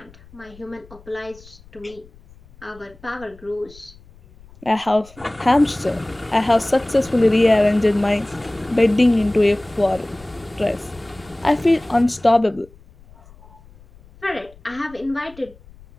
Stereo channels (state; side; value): noise; left; rumble, 24 dB below the sound